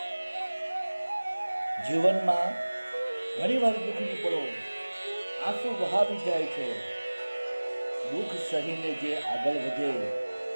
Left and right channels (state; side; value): inverted; both; correlation -1.00